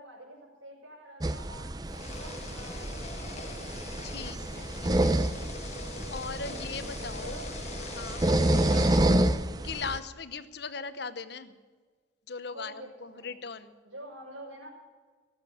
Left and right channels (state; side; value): normal; both; correlation 0.73